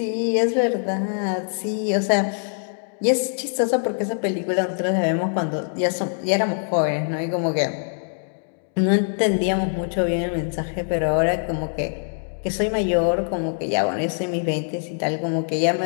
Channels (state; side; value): silent; right; digital silence